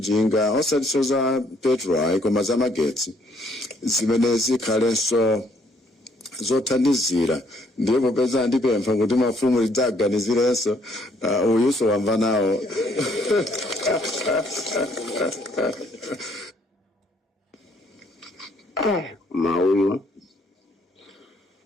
osati za petrol koma za magetsi zimene zikhalenso zothandizira. Ndipo popeza ndipempha kuti mafumu lidzaganizirenso uyuso wamva nawo. Mauyu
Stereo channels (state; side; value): normal; both; correlation 0.66